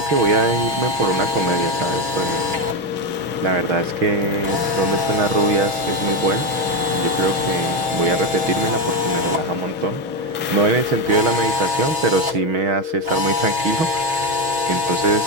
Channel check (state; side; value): late; left; 6.2 ms